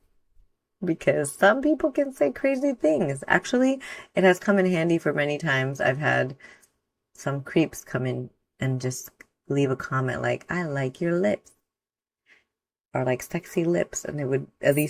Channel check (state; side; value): identical; both; correlation 1.00